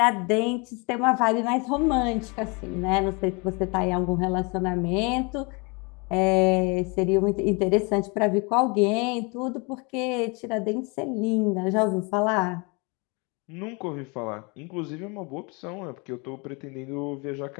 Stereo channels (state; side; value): quieter; right; 30.4 dB